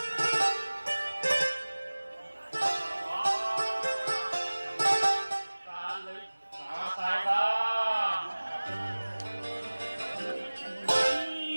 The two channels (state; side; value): inverted; both; correlation -1.00